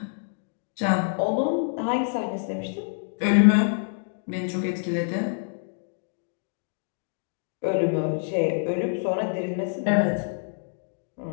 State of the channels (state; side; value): silent; right; digital silence